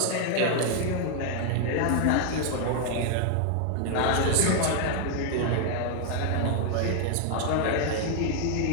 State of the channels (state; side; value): different; both; correlation 0.00